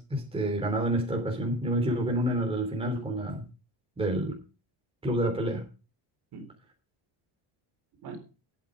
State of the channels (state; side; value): normal; both; correlation 0.37